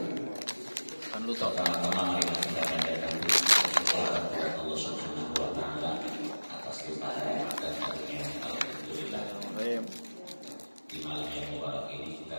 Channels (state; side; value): inverted; both; correlation -1.00